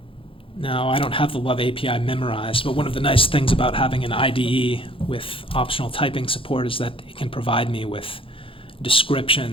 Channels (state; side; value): late; right; 0.26 ms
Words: Now, I don't have the Love API memorized, but one of the nice things about having an IDE with optional typing support is that it can provide me with